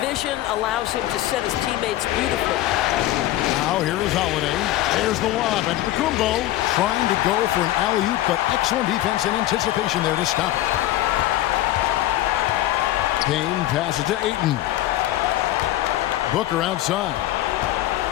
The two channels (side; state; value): right; quieter; 14.8 dB